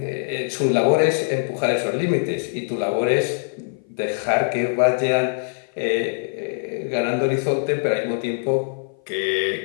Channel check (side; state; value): right; silent; 57 dB below the other